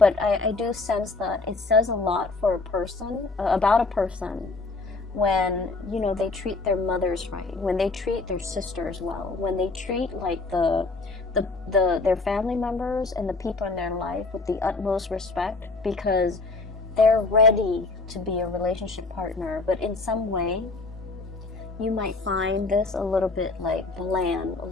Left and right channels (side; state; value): right; quieter; 3.6 dB